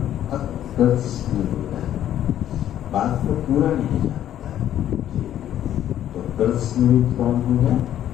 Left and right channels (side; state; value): right; quieter; 11.4 dB